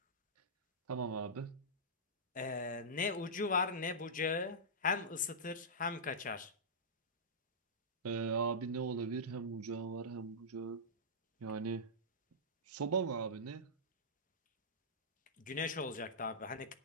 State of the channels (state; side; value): normal; both; correlation -0.14